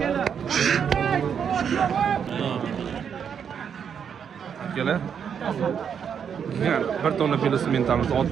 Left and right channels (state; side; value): quieter; left; 7.6 dB